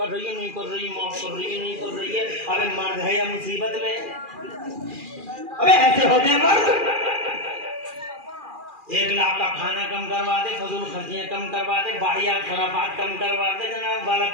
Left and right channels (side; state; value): left; late; 2.4 ms